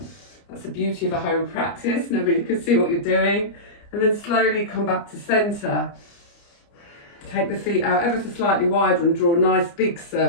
That's the beauty of a home practice, nobody can see what you're doing. And then slowly come back to centre. Take the feet out ever so slightly wider and draw a nice big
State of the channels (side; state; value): right; late; 29 ms